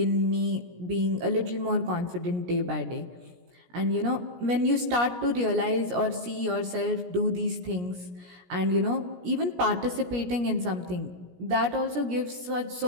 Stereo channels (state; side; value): late; left; 17 ms